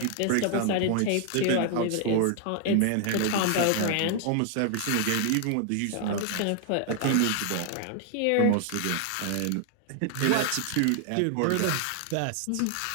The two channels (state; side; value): different; both; correlation 0.00